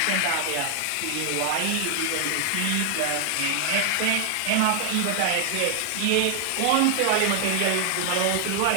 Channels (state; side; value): different; both; correlation 0.00